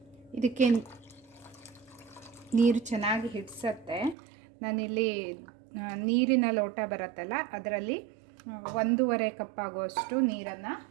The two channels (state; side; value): drops out; left; at 4.2 s